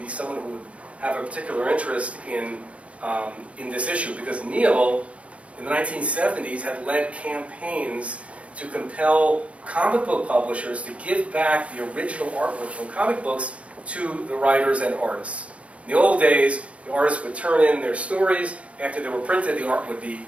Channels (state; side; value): late; left; 0.063 ms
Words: be someone who would have a particular interest in this issue, because Neal, in the 1970s, had led campaigns to compel comic book publishers to give back the original artwork from comic books to the writers and artists. In the old days, the artists would turn in their stories. After they were printed, the art would be